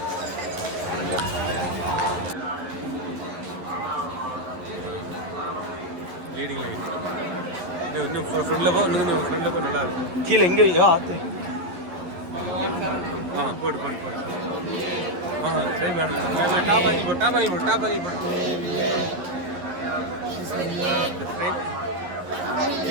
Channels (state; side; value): late; left; 11 ms